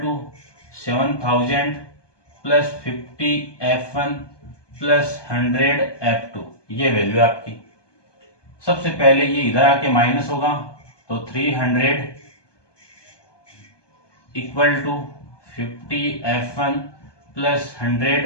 7000 plus 50 F1 plus 100 F2, ये वैल्यू आपकी। सबसे पहले ये इधर आके माइनस होगा तो 300 equal to 50 F1 plus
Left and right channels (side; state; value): right; late; 1.2 ms